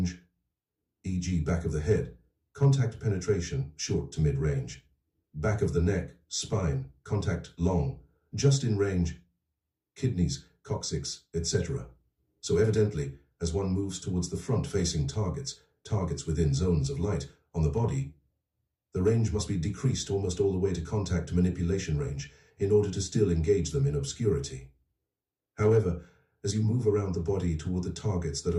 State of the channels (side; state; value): both; identical; correlation 1.00